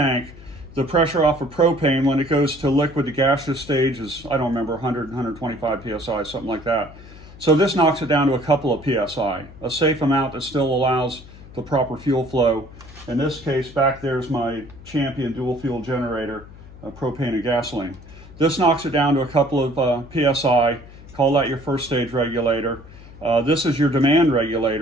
The pressure off of propane when it goes to liquid to gaseous stage is, I don't remember, 100, 125 psi, something like that. So this knocks it down to a couple of psi, a safe amount that still allows the proper fuel flow. In this case, back there's my Champion dual fuel generator, propane and gasoline. This knocks it down to a couple of psi. Call that your first stage regulator. This is your demand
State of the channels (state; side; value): noise; left; hum, 19 dB below the sound